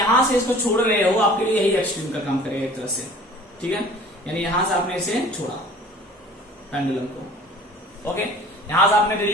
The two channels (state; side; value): normal; both; correlation 0.47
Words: से इसको छोड़ रहे हो, आपके लिए यही एक्सट्रीम का काम करेगा एक तरह से, ठीक है। यानी यहां से आपने इसे छोड़ा पेंडुलम को। ओके, यहां से आपने